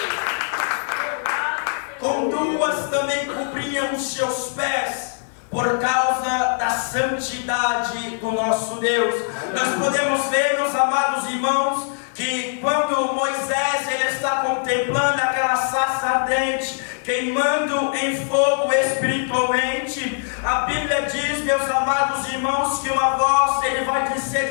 o com 2 também cobriam os seus pés, por causa da santidade do nosso Deus. Nós podemos ver, meus amados irmãos, que quando Moisés ele está contemplando aquela sarça ardente, queimando em fogo espiritualmente, a Bíblia diz, meus amados irmãos, que uma voz ele vai ser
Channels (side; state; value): right; silent; 64 dB below the other